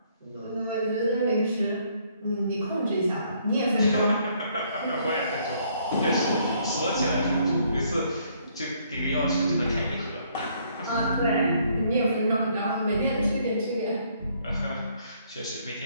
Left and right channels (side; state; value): both; inverted; correlation -0.67